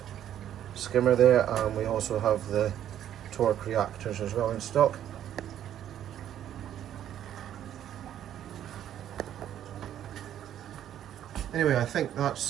skimmer there, and we also have the torque reactors as well in stock. Anyway, I think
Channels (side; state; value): left; quieter; 10.8 dB